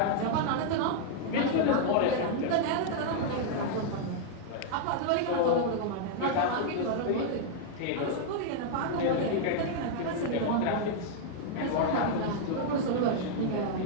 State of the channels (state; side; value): different; both; correlation -0.01